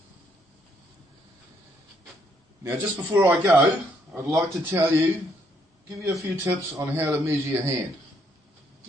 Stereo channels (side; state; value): both; normal; correlation 0.71